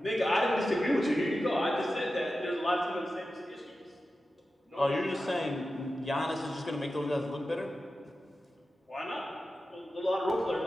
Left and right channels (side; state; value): both; normal; correlation 0.93